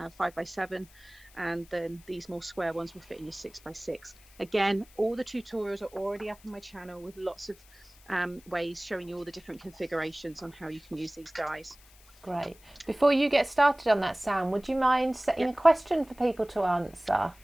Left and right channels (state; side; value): noise; left; hiss, 25 dB below the sound